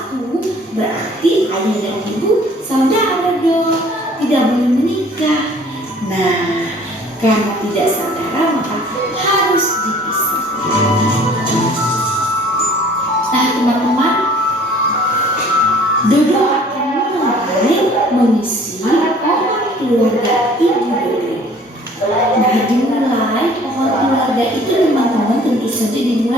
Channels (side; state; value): both; normal; correlation 0.52